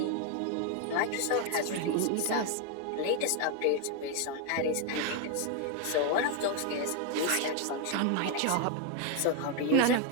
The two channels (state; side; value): different; both; correlation 0.01